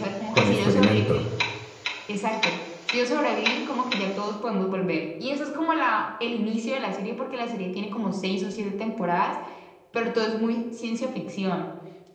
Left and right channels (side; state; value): both; identical; correlation 1.00